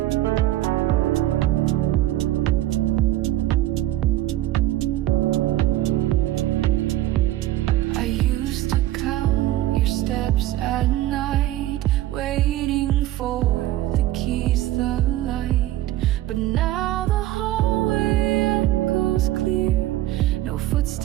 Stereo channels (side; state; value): left; quieter; 14.7 dB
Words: I used to count your steps at night, waiting for the keys, the light. But now the hallway echoes clear, no